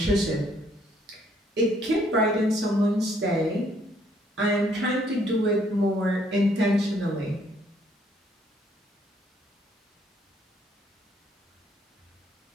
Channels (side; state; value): both; normal; correlation 0.66